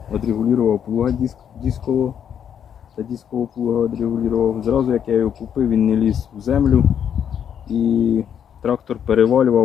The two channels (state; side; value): quieter; right; 8.6 dB